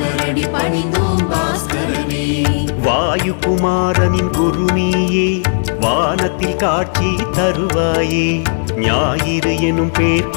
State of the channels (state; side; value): silent; right; digital silence